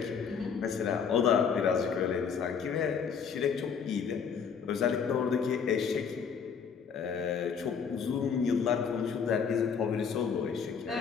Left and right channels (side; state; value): right; quieter; 6.6 dB